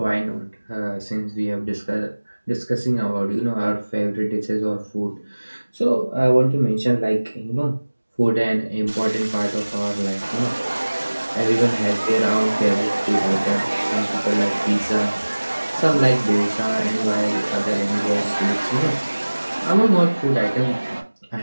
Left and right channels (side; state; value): both; inverted; correlation -1.00